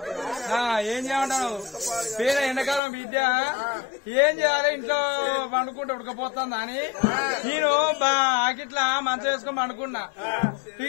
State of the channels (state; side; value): drops out; right; at 2.8 s